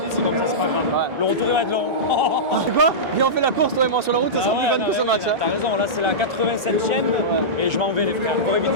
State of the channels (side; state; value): left; late; 1.4 ms